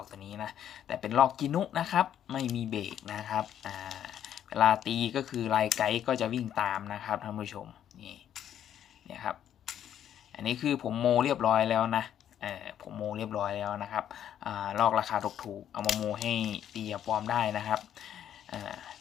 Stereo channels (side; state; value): right; quieter; 10.2 dB